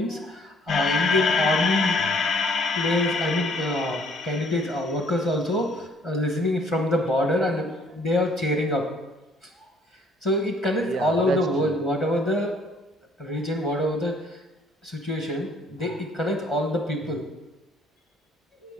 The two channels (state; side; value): normal; both; correlation 0.61